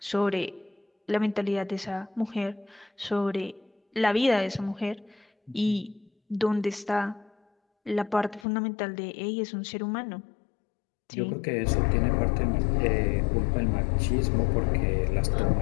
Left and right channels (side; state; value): right; drops out; at 8.5 s